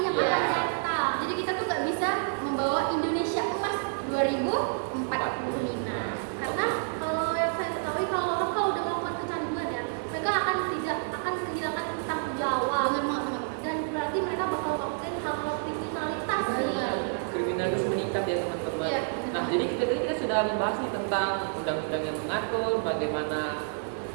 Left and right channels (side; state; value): left; silent; 59 dB below the other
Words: yang Iya. akan datang. Jadi kita tuh nggak bisa membawa Indonesia emas 2045. Karena kalau yang saya ketahui kalau orang kalau udah melakukan kecanduan ya, mereka akan kehilangan tanggung jawab. Bener banget teman-teman. Dan berarti mereka bakal melakukan hal-hal kriminalitas nih. Benar. kriminalitas meningkat ya teman-teman. Iya. Nah, jadi kita sudah membahas nih tentang undang-undang yang mengatur bagaimana